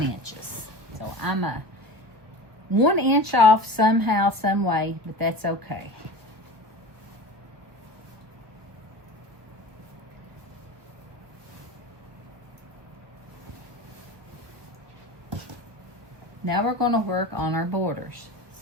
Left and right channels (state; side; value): late; left; 1.3 ms